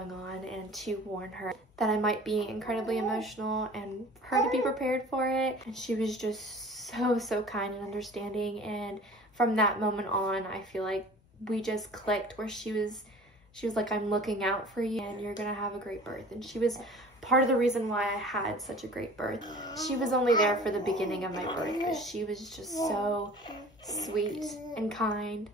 on and to warn her that I might be incredibly emotional and for her to be prepared for it. And she was just so kind and understanding, and from that moment on I feel like we just clicked, where she was She was like, I'm looking out for you and you're gonna have a great birth. And she was part of the reason why I had such a great birth. She was only there for the beginning of my birth, but she was just so sweet and kind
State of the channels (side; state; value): both; normal; correlation 0.45